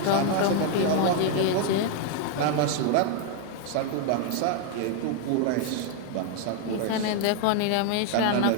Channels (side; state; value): both; different; correlation 0.01